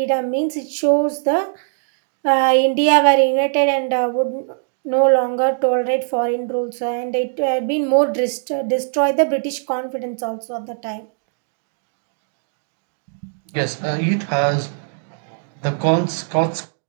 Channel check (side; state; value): left; silent; digital silence